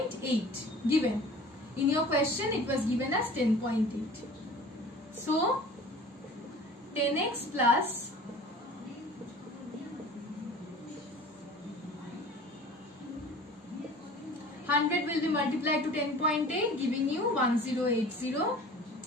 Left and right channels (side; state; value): both; normal; correlation 0.43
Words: given. In your question it was given as 10.8. So 10x plus 100 will be multiplied to 10.8 giving you 1080